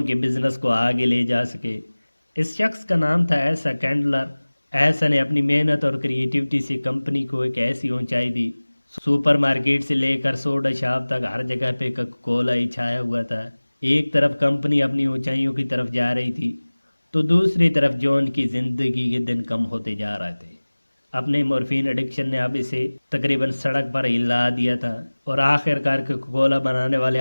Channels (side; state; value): both; inverted; correlation -1.00